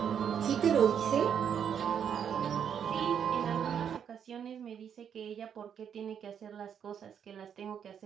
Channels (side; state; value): left; quieter; 8.2 dB